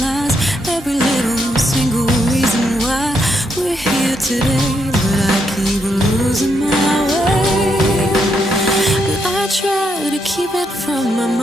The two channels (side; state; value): both; normal; correlation 0.79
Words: every little single reason why we're here today, but I keep losing my way. But I try to keep it from my